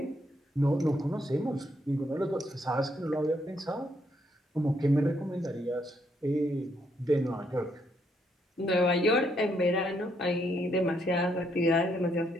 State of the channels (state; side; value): normal; both; correlation 0.74